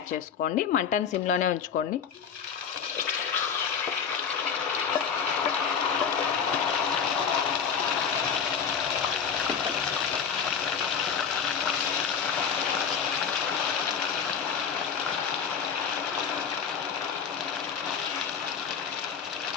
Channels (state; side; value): quieter; right; 6.9 dB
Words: చేసుకోండి. మంటని సిమ్లోనే ఉంచుకోండి.